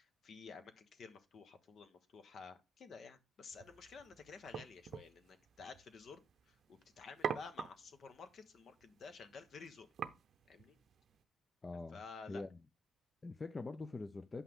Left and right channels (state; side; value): normal; both; correlation 0.76